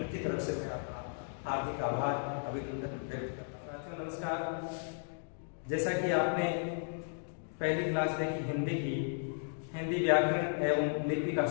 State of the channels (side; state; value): right; silent; digital silence